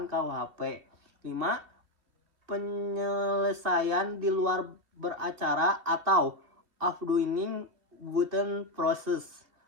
KUHP. 5. Penyelesaian di luar beracara atau afdoing within process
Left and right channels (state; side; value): late; left; 2.7 ms